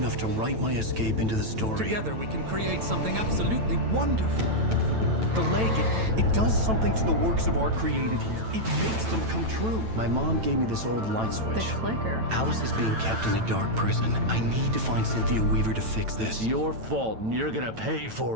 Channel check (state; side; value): late; left; 9.0 ms